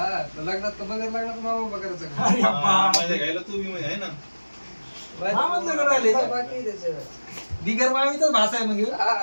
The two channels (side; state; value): both; inverted; correlation -1.00